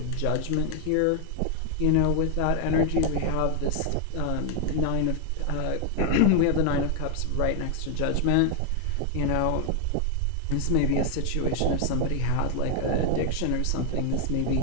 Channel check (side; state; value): both; different; correlation 0.00